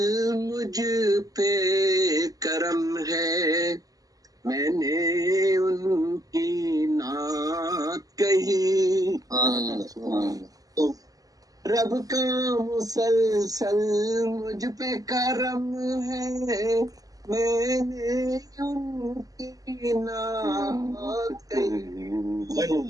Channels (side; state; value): left; late; 0.17 ms